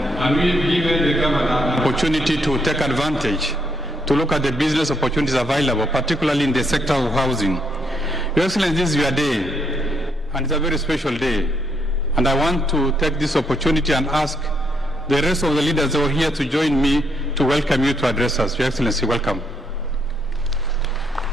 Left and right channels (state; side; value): normal; both; correlation 0.74